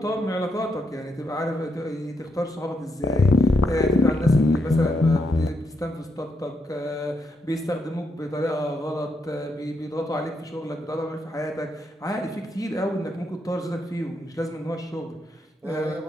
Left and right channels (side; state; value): both; normal; correlation 0.80